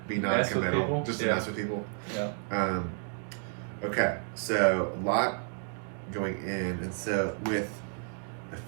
be non-committal. Just to mess with people. Yeah. Okay. So a lot going in. And so with a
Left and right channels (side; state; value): left; silent; 56 dB below the other